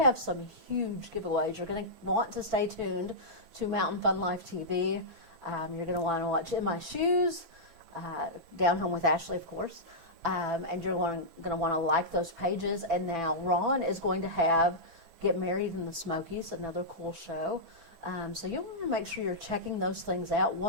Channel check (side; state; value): left; late; 6.0 ms